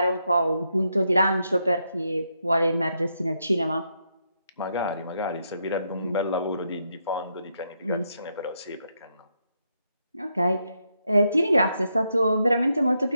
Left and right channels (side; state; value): both; inverted; correlation -0.80